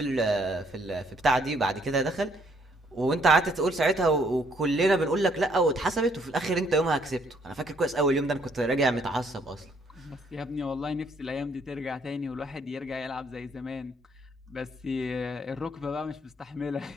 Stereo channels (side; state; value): both; normal; correlation 0.67